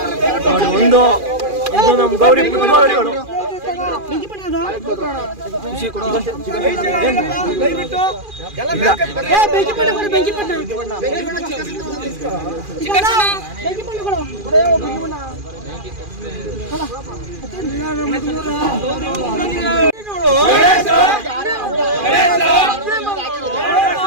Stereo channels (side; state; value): left; late; 2.4 ms